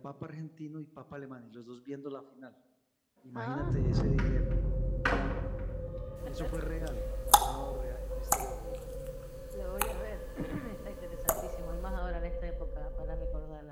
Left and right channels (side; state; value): both; identical; correlation 1.00